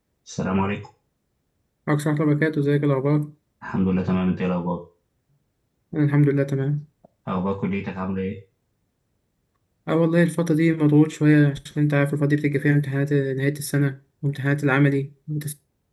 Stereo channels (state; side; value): identical; both; correlation 1.00